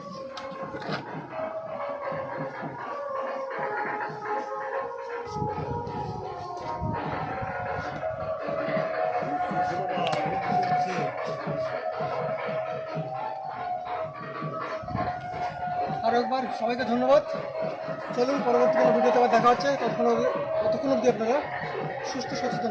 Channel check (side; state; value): both; identical; correlation 1.00